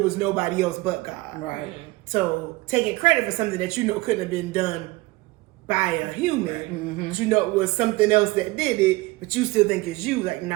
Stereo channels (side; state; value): left; quieter; 21.2 dB